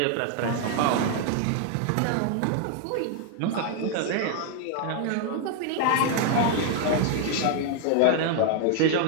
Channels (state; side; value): different; both; correlation 0.00